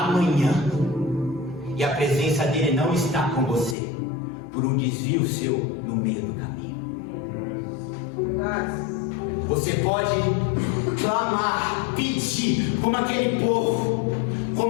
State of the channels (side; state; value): right; drops out; at 3.8 s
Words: e a presença dele não está com você por um desvio seu no meio do caminho. Você pode clamar, pedir, como aquele povo,